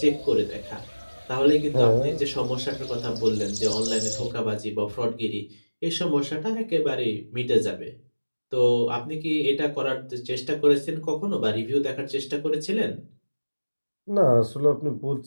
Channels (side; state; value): both; inverted; correlation -1.00